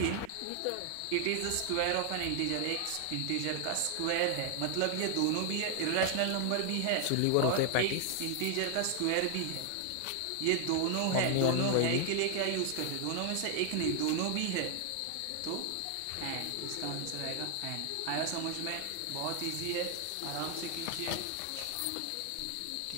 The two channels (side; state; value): both; different; correlation 0.00